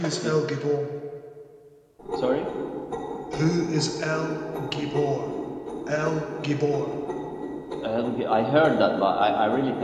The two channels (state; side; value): identical; both; correlation 1.00